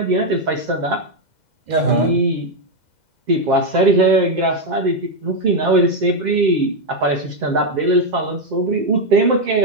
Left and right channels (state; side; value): late; left; 2.0 ms